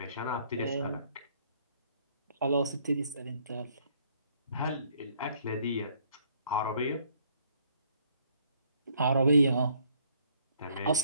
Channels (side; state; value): both; inverted; correlation -0.65